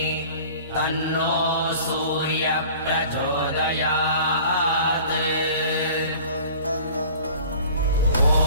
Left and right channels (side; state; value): both; inverted; correlation -0.45